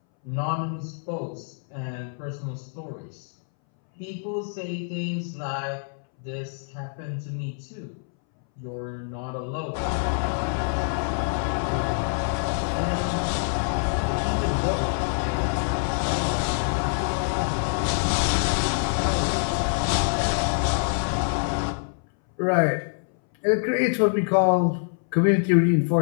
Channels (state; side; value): silent; right; 61 dB below the other